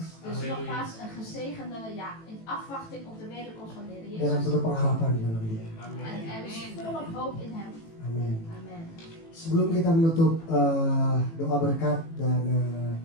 Dus nogmaals een gezegende in afwachting op de wederkomst van de Heer dengan Jezus. penuh pengharapan di dalam dia. En er is volop hoop in hem. Amin. Amen. Sebelum kita menutup doa berkat dan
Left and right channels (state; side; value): late; right; 18 ms